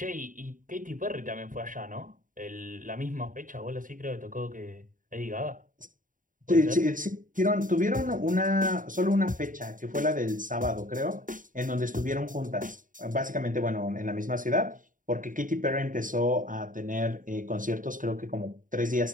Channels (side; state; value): left; late; 0.39 ms